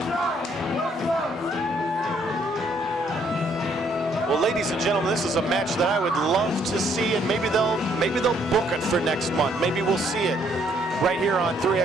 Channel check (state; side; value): normal; both; correlation 0.68